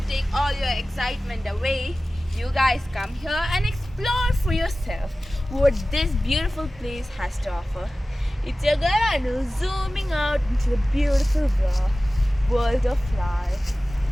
take all your excitement away. You guys come here and explore for yourself what this beautiful place has to offer. It's your girl Anu zooming out into the beautiful world of life.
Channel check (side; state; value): both; normal; correlation 0.96